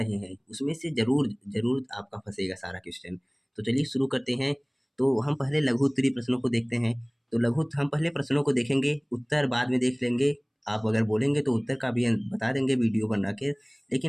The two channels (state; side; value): identical; both; correlation 1.00